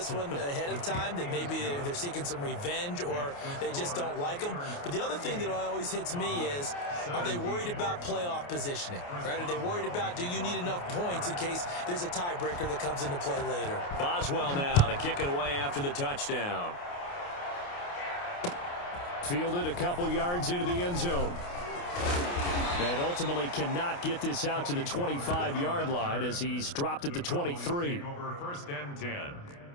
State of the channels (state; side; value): late; right; 28 ms